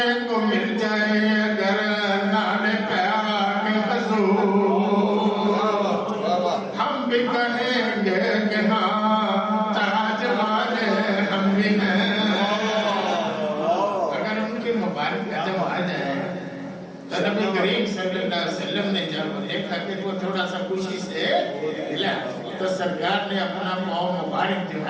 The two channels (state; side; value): identical; both; correlation 1.00